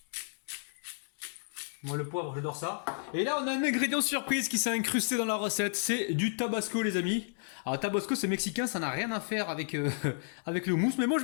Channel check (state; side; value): silent; right; digital silence